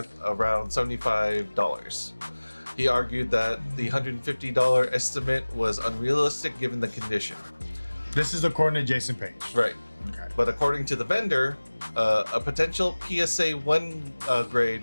around $75. He argued that the $150 estimate was unrealistic given the condition. This is according to Jason Paige. Right. Okay. But according to the vendor, a potential PSA 1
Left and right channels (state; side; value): inverted; both; correlation -1.00